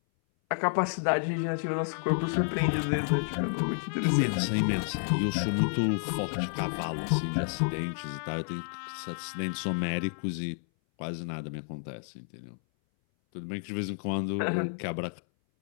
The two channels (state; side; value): silent; right; 58 dB below the other